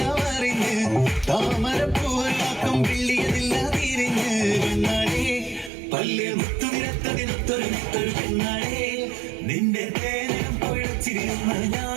അറിഞ്ഞ് താമരപ്പൂവല്ലാക്കും പിള്ളിയതില്ല തിരിഞ്ഞ് പെണ്ണാടേ പല്ല് മുത്തുനിരത്തതിനൊത്തൊരു മുത്തൊരു പെണ്ണാടേ നിന്റെ തേനം പൊഴച്ചിരുന്ന്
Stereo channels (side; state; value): left; drops out; at 5.7 s